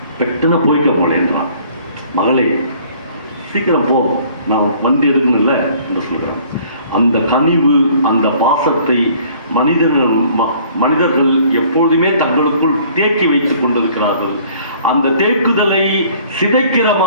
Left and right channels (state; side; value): inverted; both; correlation -0.55